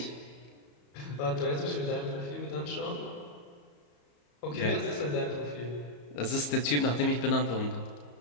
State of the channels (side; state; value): right; late; 34 ms